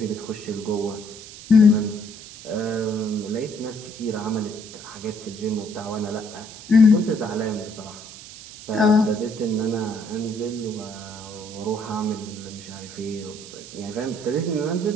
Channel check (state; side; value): noise; right; hiss, 15 dB below the sound